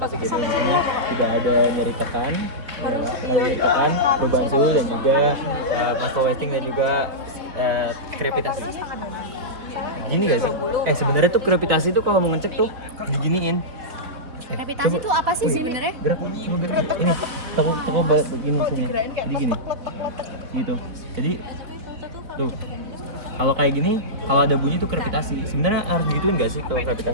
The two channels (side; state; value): left; late; 4.0 ms